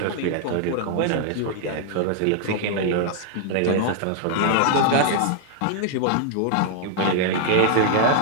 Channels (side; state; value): both; different; correlation 0.00